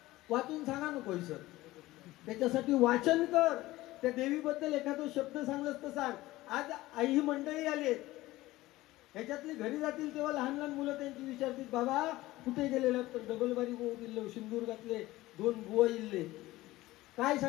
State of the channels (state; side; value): quieter; right; 17.7 dB